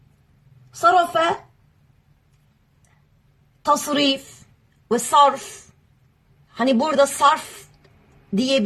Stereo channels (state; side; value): identical; both; correlation 1.00